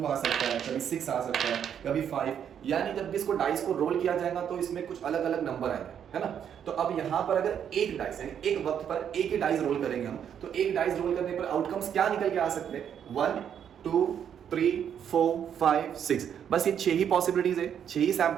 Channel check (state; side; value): quieter; left; 8.7 dB